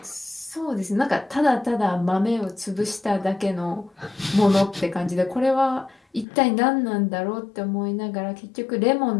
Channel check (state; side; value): drops out; right; at 6.2 s